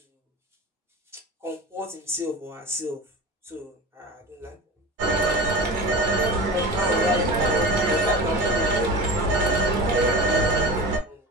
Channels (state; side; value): normal; both; correlation 0.31